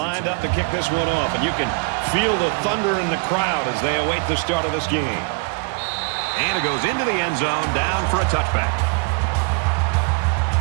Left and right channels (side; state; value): left; quieter; 33.0 dB